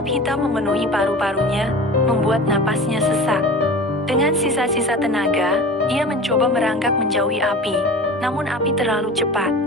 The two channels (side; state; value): both; normal; correlation 0.36